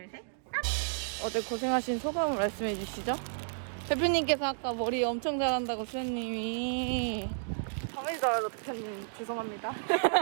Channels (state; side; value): silent; left; digital silence